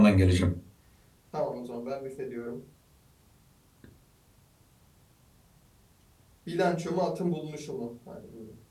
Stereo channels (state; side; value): identical; both; correlation 1.00